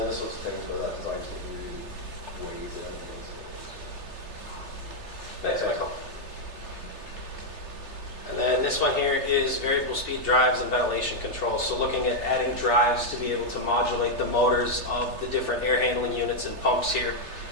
the sorts of things where that design team really weighs in. Thanks, Michael. And then this one here is variable speed drives and ventilation control. So looking at adding drives to be able to modulate the motors of the different air handling units and pumps here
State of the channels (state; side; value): late; left; 3.3 ms